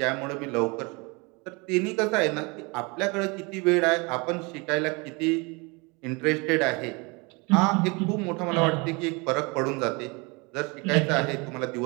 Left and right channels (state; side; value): quieter; left; 28.4 dB